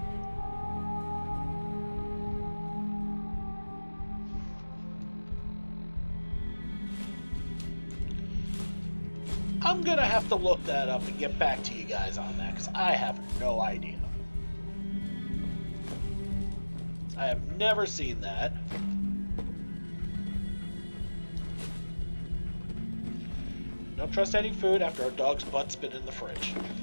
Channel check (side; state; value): both; inverted; correlation -1.00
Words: I'm gonna have to look that up and get back to you guys on that, because I have no idea. I have never seen that. Don't trust any food after our dog's butt's been in the fridge.